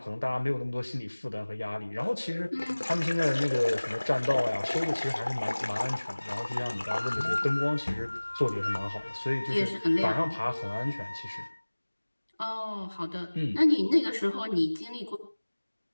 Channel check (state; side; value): inverted; both; correlation -1.00